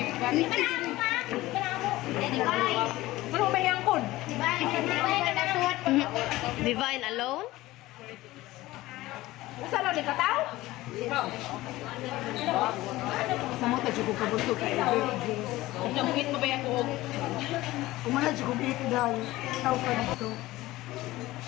Ano ba yung kon? Divine alone? Usa lang di kataw? Sa mo, tadyo ko kabuso ka. Jamugin mo ba yung kuog? Umala, dyo ko bito dahil. Tao ka dito.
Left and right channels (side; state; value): right; quieter; 17.8 dB